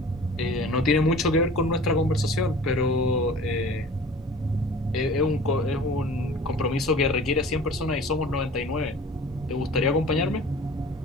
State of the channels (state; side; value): normal; both; correlation 0.43